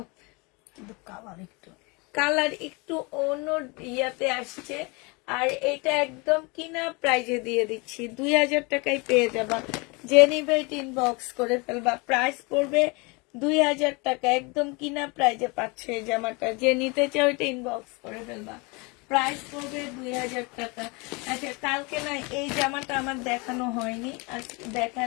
কিন্তু কালার একটু কালার একটু অন্য ইয়াতে আসছে। আর এটা একদম কিনা প্রাইজে দিয়ে দিচ্ছি, 2000 টাকায় পেয়ে যাবা। যে নিবে ইনবক্স করে ফেলবা, প্রাইস পড়বে 2000 টাকা, একদম কিনা প্রাইজে পাচ্ছে এই জামাটা। যে নিতে চাও এটা ইনবক্স করে ফেলবা, প্রাইস পড়বে 2000 টাকা। আচ্ছা, কালকে না এই জামাটা আমার দেখানো হয়নি, আজকে দেখা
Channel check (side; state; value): right; quieter; 28.5 dB